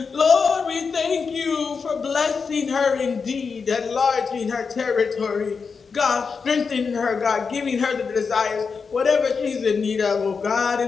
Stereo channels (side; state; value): right; quieter; 5.3 dB